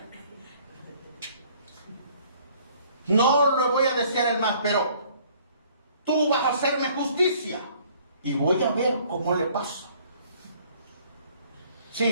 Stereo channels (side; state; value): both; inverted; correlation -0.58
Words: No lo voy a desear el mal, pero tú vas a hacerme justicia y voy a ver cómo le pasa.